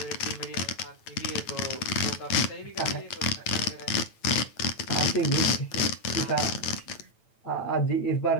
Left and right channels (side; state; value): right; late; 9.0 ms